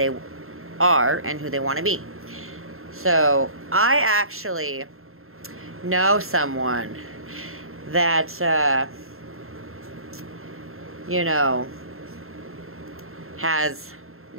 are and who they want to be. So I actually know someone that has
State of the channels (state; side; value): late; left; 0.61 ms